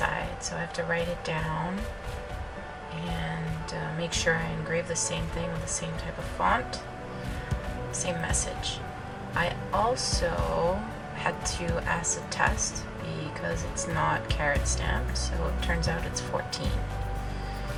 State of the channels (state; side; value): identical; both; correlation 1.00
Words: so I have to write it down and make sure I engrave the same thing with the same type of font, same message. I also had to acid test because it's not carat stamped, so it turns out it's 14.